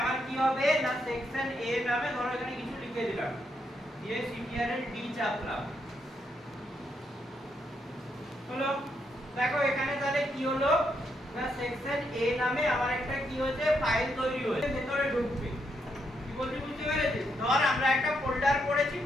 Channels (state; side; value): normal; both; correlation 0.79